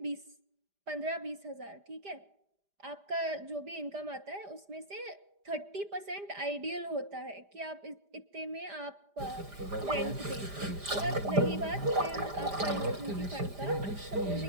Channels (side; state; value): left; late; 5.0 ms